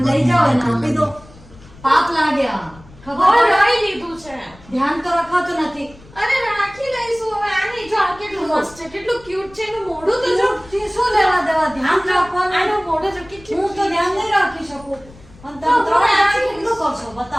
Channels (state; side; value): noise; left; rumble, 23 dB below the sound